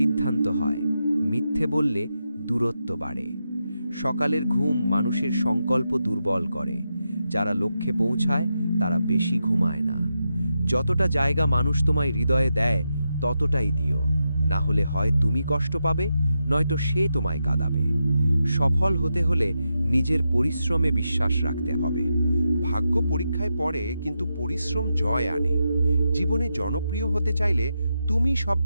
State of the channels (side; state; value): both; inverted; correlation -0.87